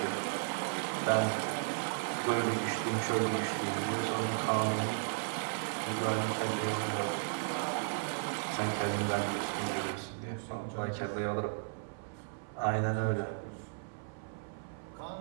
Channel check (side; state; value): left; silent; 55 dB below the other